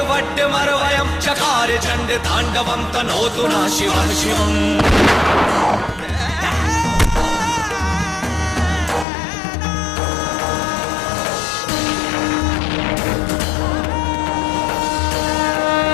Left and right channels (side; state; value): right; drops out; at 9.1 s